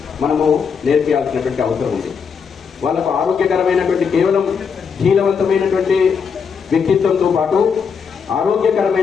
మనము నేర్పించాల్సినటువంటి అవసరం ఉంది. వాళ్ళకు ఆరోగ్యకరమైనటువంటి, కేవలం శీలవంతమైనటువంటి వ్యక్తిత్వంతో పాటు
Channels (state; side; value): quieter; right; 6.2 dB